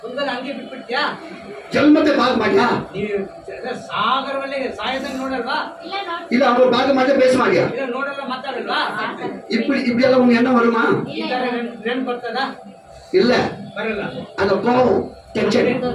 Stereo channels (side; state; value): both; identical; correlation 1.00